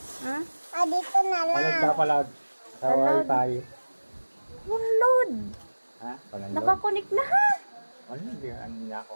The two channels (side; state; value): both; inverted; correlation -1.00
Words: Ha? Dito na lang. Palag ka palag. Sa wifi. Download. Ha? Palag. Nakakonik na ha. Ano? Hindi ano niya ako.